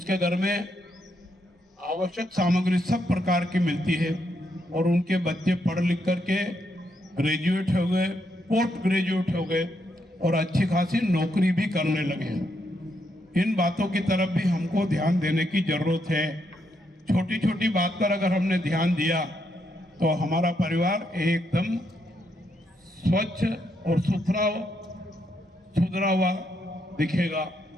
घर में आवश्यक सामग्री सब प्रकार की मिलती है, और उनके बच्चे पढ़ लिख करके ग्रेजुएट हो गए, पोस्ट ग्रेजुएट हो गए, और अच्छी खासी नौकरी भी करने लगे हैं। इन बातों की तरफ भी हमको ध्यान देने की जरूरत है। छोटी छोटी बात पर अगर हमने ध्यान दिया तो हमारा परिवार एकदम स्वच्छ और सुधरा हुआ दिखेगा,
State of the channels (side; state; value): both; normal; correlation 0.78